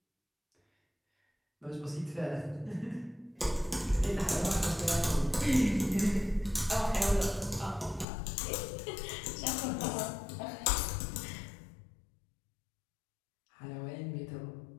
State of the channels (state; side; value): drops out; right; at 8.1 s